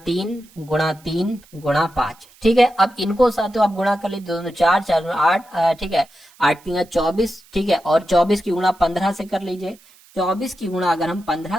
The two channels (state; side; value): noise; right; hiss, 27 dB below the sound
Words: 3 गुणा 3 गुणा 5। ठीक है, अब इनको साथियों आप गुणा कर लीजिए, 2 4 4 8, ठीक है, 8 3 24, ठीक है, और 24 की गुणा 15 से कर लीजिए। 24 की गुणा अगर हम